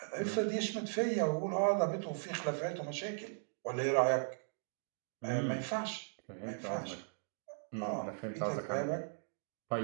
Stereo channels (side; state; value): left; silent; digital silence